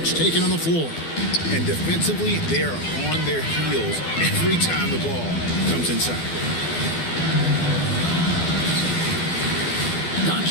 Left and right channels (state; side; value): late; right; 12 ms